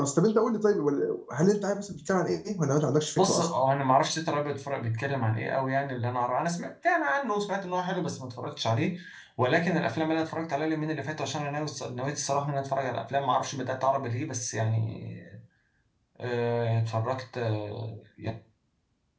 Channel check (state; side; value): identical; both; correlation 1.00